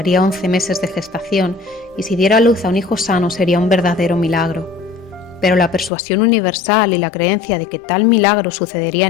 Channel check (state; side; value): drops out; right; at 5.9 s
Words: 11 meses de gestación y si diera a luz a un hijo sano sería un verdadero milagro. Pero la persuasión universal y la creencia de que tal milagro sucedería